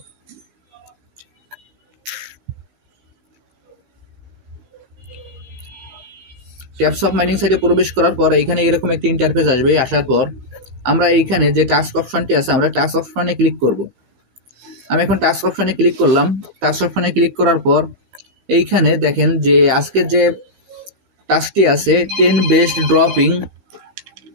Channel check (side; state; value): left; late; 15 ms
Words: ট্যাপস অফ মাইনিং সাইটে প্রবেশ করার পর এখানে এরকম একটি ইন্টারফেস আসবে। আসার পর আমরা এইখানে যে টাস্ক অপশনটি আছে আমরা টাস্ক অপশনে ক্লিক করব। আমি এখন টাস্ক অপশনে ক্লিক করলাম। টাস্ক অপশনে ক্লিক করার পর এইখানে দেখেন যে আজকের যে টাস্কটি আছে 10 বেস্ট ড্রপিং,